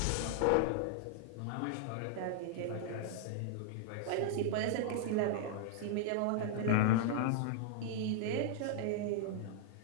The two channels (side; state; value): both; different; correlation -0.01